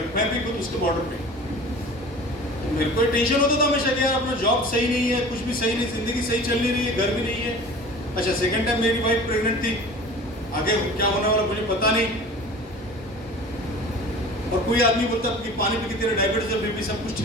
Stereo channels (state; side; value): normal; both; correlation 0.41